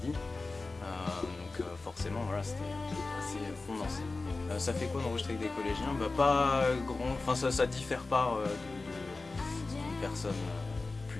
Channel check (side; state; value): right; quieter; 3.6 dB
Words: Donc forcément voilà, c'était assez condensé. Ça fait quoi d'enregistrer avec des collégiens? Pas grand, enfin ça diffère pas d'une personne